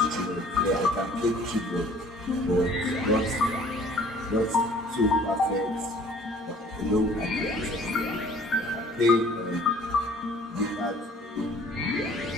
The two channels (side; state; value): both; normal; correlation 0.53